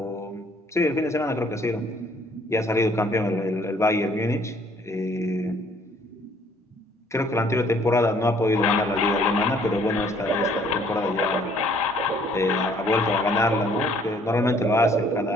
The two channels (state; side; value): normal; both; correlation 0.61